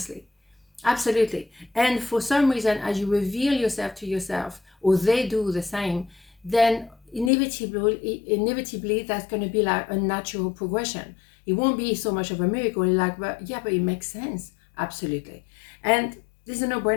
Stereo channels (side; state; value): right; drops out; at 7.3 s